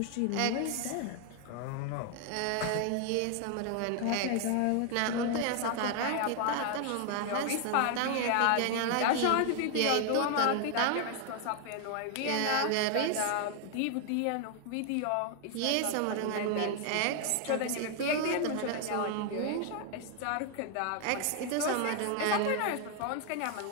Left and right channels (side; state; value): both; different; correlation 0.00